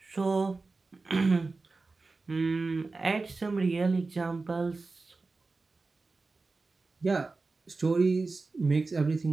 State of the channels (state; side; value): quieter; left; 3.7 dB